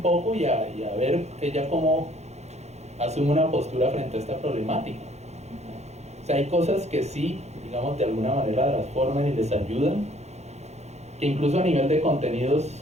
y a ver ella cómo asume una postura frente a esta problemática. O sea, hay cosas que sí, digamos, de alguna manera las forman y les ayudan, que incluso a nivel de contenidos,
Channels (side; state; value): left; late; 0.32 ms